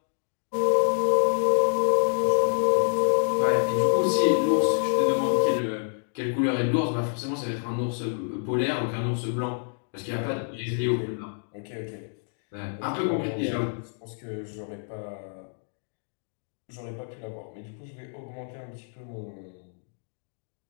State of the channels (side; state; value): right; silent; digital silence